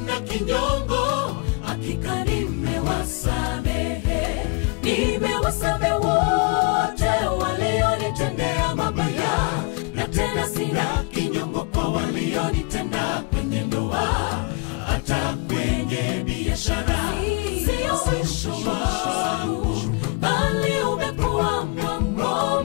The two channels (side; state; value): right; quieter; 29.4 dB